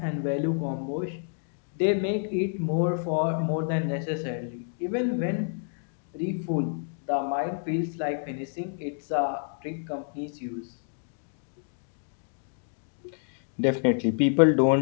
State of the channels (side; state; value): right; silent; digital silence